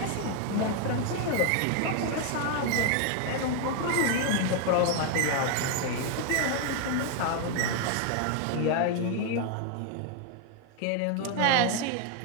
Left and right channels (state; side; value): different; both; correlation 0.01